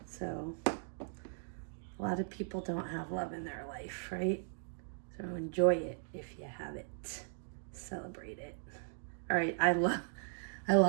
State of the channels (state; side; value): silent; left; digital silence